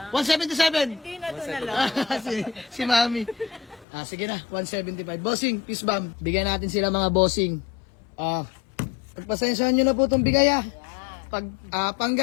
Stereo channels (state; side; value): drops out; right; at 3.9 s